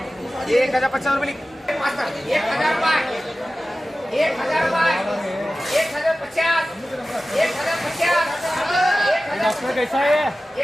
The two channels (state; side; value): normal; both; correlation 0.96